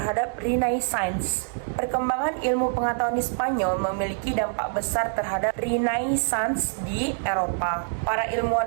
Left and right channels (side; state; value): left; silent; digital silence